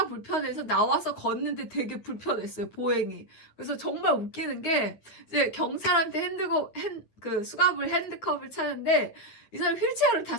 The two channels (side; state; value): right; late; 9.5 ms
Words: 불편해서 나와서 걷는데 되게 불편했어요. 보행이. 그래서 정말 웃기는 게 이제 경찰한테 수갑을 핸드컵을 차는데 이 사람이 휠체어를